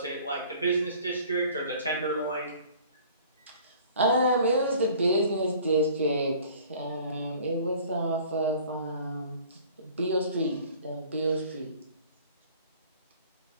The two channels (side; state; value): both; inverted; correlation -0.50